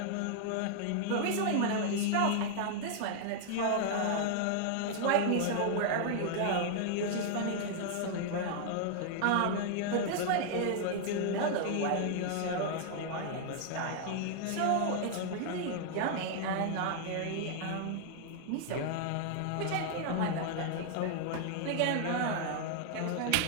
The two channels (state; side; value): different; both; correlation 0.00